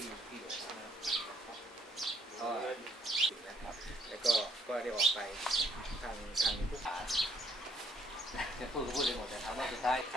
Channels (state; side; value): normal; both; correlation 0.68